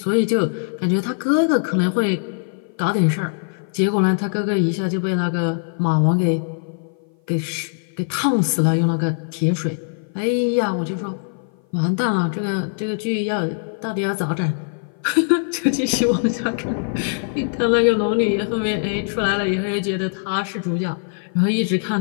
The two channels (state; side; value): silent; right; 56 dB below the other